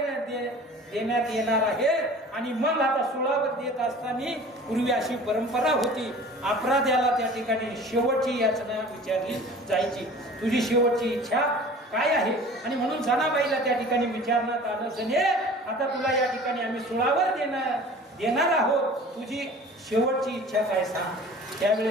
येणार आहे. आणि मग आता सुळावर देत असताना पूर्वी अशी परंपरा होती, अपराध्याला त्या ठिकाणी शेवटची याचना विचारली जायची, तुझी शेवटची इच्छा काय आहे. आणि म्हणून जनाबाईला त्या ठिकाणी विचारण्यात आलं, जने आता तुला या ठिकाणी आम्ही सुळावर देणार आहोत, तुझी शेवटची इच्छा काय सांग.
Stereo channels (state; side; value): normal; both; correlation 0.43